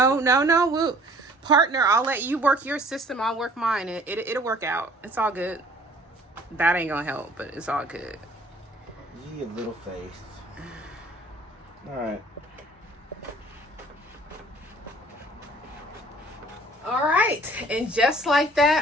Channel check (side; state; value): both; normal; correlation 0.53